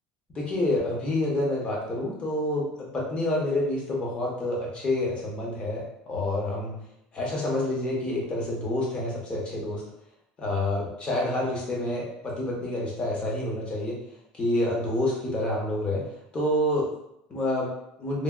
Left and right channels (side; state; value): both; normal; correlation 0.46